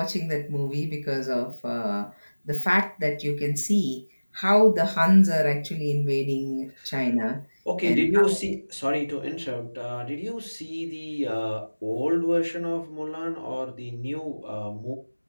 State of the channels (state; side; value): inverted; both; correlation -1.00